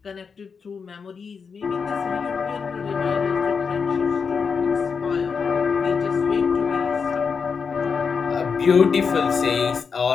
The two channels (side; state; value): right; quieter; 5.7 dB